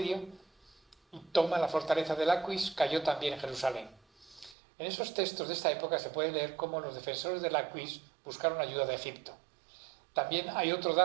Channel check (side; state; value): left; drops out; at 4.5 s